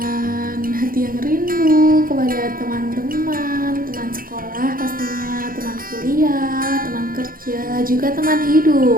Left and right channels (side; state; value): left; late; 0.41 ms